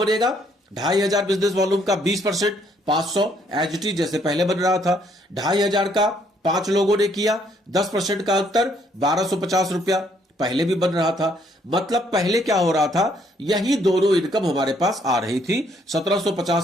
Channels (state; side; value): normal; both; correlation 0.68